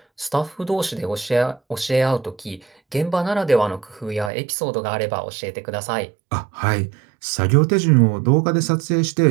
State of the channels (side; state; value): left; drops out; at 4.3 s